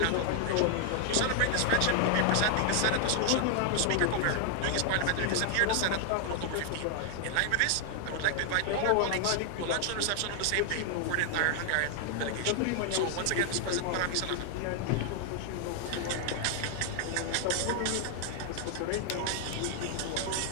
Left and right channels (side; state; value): both; different; correlation 0.00